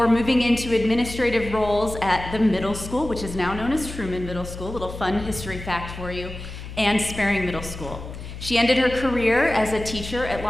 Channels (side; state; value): left; noise; hum, 11 dB below the sound